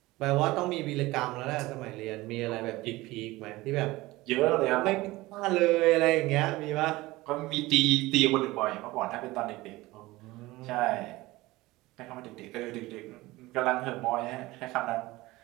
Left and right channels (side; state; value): left; quieter; 19.6 dB